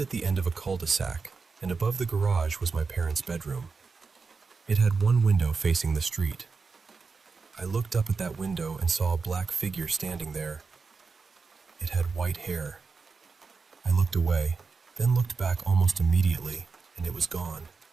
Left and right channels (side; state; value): left; quieter; 4.7 dB